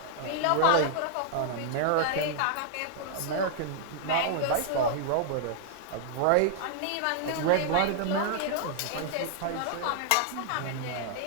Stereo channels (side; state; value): both; different; correlation -0.01